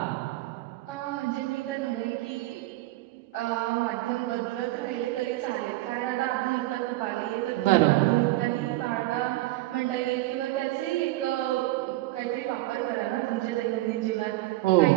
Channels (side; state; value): left; quieter; 18.0 dB